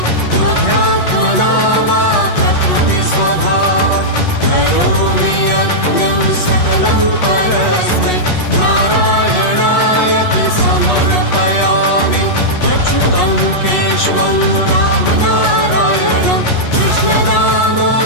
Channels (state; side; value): late; right; 8.3 ms